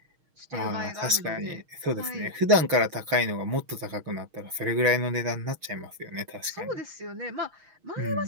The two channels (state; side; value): late; left; 6.4 ms